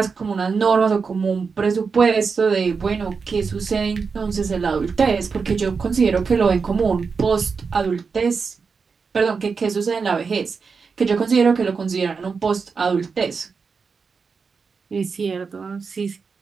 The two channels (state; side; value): quieter; left; 5.2 dB